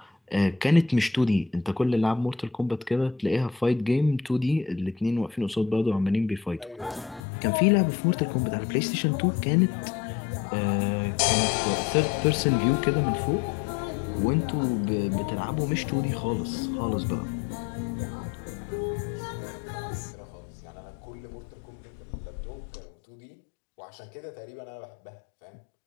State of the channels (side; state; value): right; drops out; at 7.2 s